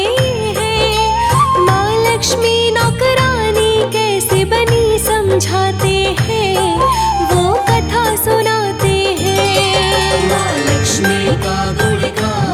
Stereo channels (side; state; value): both; identical; correlation 1.00